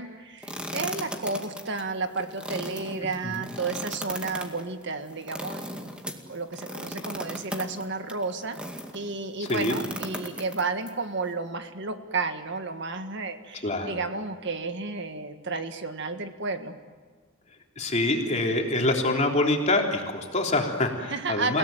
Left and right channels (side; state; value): both; normal; correlation 0.02